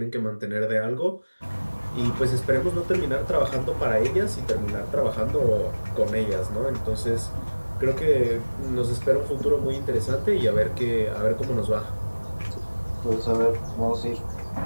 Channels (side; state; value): both; inverted; correlation -1.00